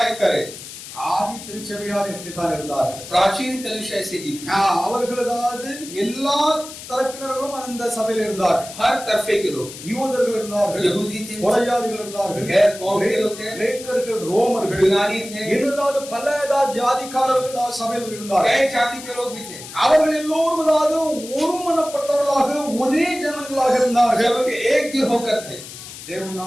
करे। ஆதி திருச்சபையார் எப்படித்தான் இருந்தார்கள்? प्राचीन कलीसिया ऐसे ही थी। அவர்கள் எல்லா தரப்பினர்களும் அந்த சபையில் இருந்தார்கள். हर तरफे के लोग, யூதர்கள் இருந்தார்கள், यहूदी थे, புறஜாதிகள் இருந்தார்கள், गैर कौम के लोग थे, கிரேக்கர்கள், ரோமர்கள், यूनानी थे, இன்னும் பல ஜாதிக்காரர்கள் சபையில் இருந்தார்கள். कई जाति के लोग भी थे। அவர்கள் எல்லோரும் ஒருமனப்பட்டவர்களாக ஒரே ஜனங்களாக இருந்தார்கள். सबके एक दिल होकर थे। தேவன்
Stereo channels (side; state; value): left; noise; hiss, 13 dB below the sound